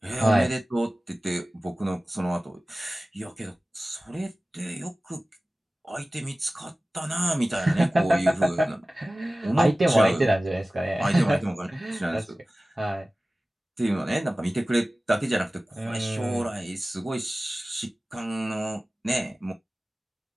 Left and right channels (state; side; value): normal; both; correlation 0.97